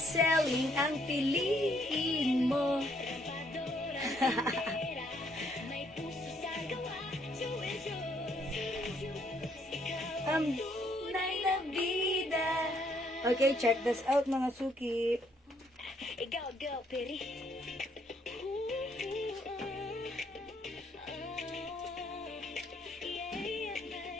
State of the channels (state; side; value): normal; both; correlation 0.69